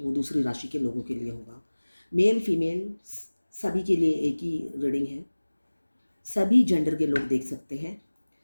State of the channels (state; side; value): inverted; both; correlation -1.00